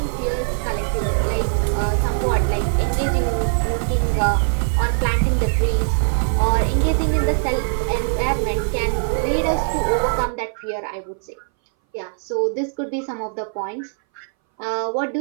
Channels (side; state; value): left; silent; 61 dB below the other